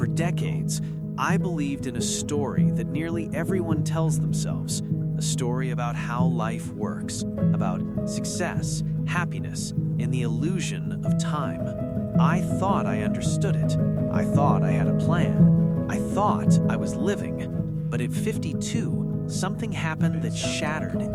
decades, I believed in a story that nearly everyone tells themselves, a story about how life works, about success, happiness, and the illusion of time. I thought I understood it. I thought I had a plan. I thought I was living. But at 52, something happened that shattered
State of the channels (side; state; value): both; identical; correlation 1.00